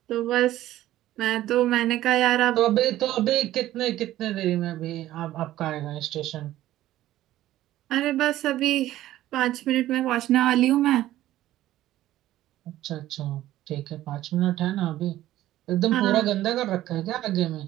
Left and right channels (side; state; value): left; quieter; 14.3 dB